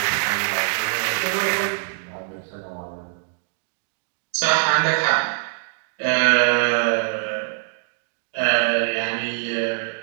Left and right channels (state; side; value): silent; left; digital silence